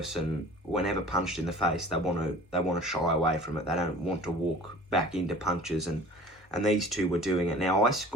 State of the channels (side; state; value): both; normal; correlation 0.44